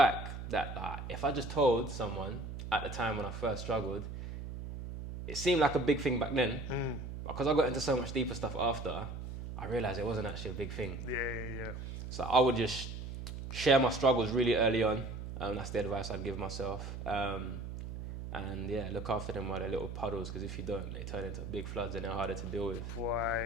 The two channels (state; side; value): noise; right; hum, 8 dB below the sound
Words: that if I just told someone at the time when I first struggled, it seemed like a big thing back then, but because I got into so much deeper stuff after, I realized it wasn't actually a big thing. Yeah. So I would just share my struggles really early on. That's the advice I'd give myself. And yeah, look after them while they're little puddles, because if you don't, they turn into big floods and they're harder to deal with.